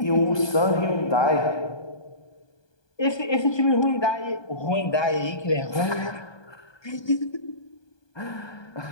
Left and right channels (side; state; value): right; late; 1.2 ms